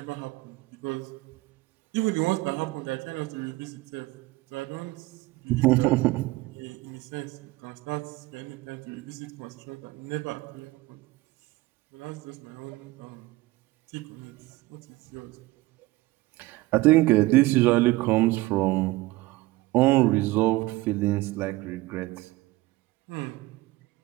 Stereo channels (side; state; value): left; quieter; 19.6 dB